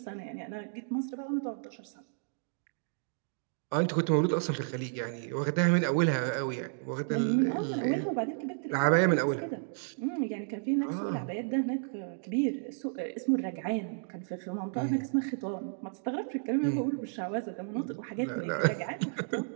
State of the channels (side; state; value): left; silent; digital silence